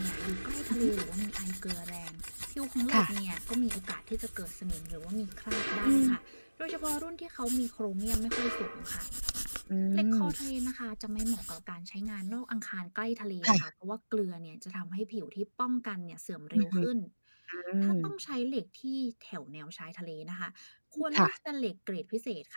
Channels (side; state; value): both; inverted; correlation -1.00